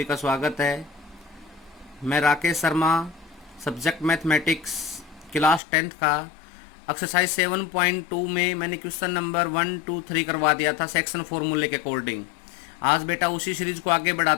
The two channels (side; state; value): right; drops out; at 5.6 s